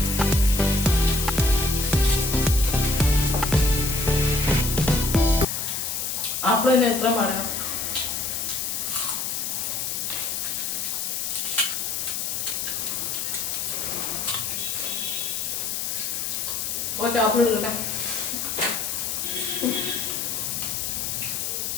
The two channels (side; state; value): left; noise; hiss, 2 dB below the sound